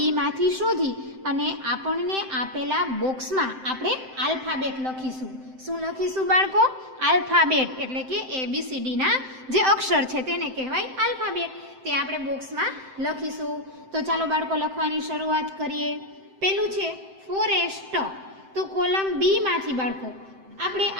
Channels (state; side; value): late; left; 7.7 ms